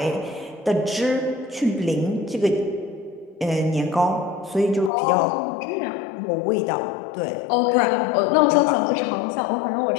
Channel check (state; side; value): drops out; right; at 4.9 s